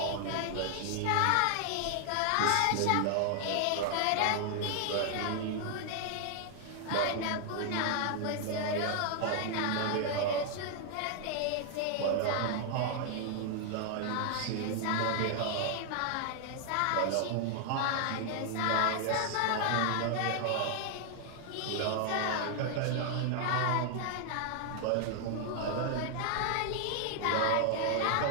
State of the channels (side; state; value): both; different; correlation 0.00